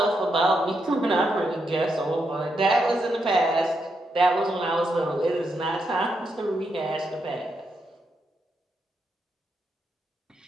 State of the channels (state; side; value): normal; both; correlation 0.82